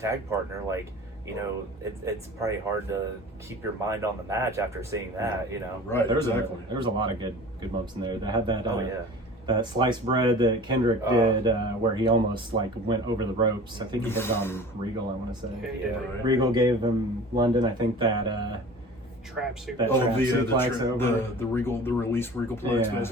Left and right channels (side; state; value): both; normal; correlation 0.41